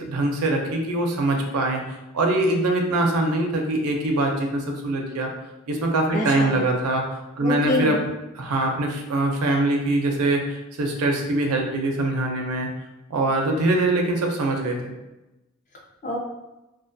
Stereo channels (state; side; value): normal; both; correlation 0.40